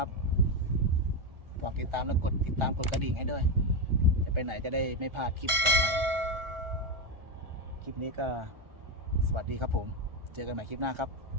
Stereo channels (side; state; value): left; late; 1.4 ms